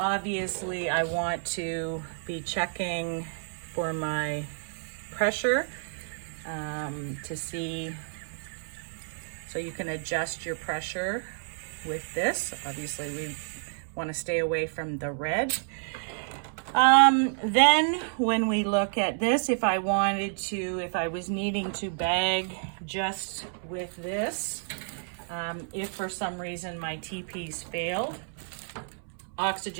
I want to be checking for my pressure to see, so you can adjust your pressure with this. Obviously we want to stay away from the red. Then when we look at this, if I was needing to bag just with this, if for some reason my TPs failed,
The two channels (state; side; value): silent; left; 58 dB below the other